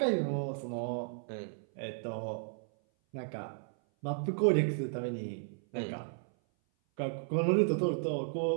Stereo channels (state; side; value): silent; left; 55 dB below the other